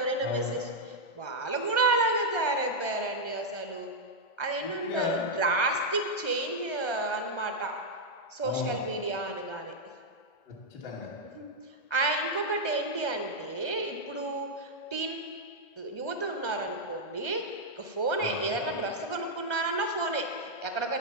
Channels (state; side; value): late; right; 1.3 ms